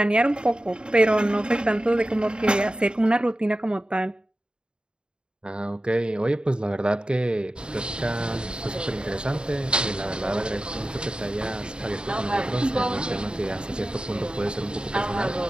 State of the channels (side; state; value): left; late; 0.050 ms